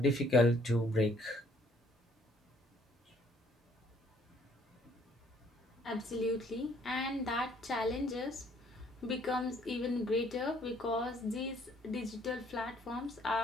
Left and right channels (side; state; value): both; normal; correlation 0.63